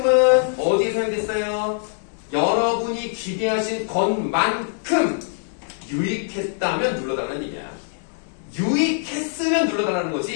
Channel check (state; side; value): silent; right; digital silence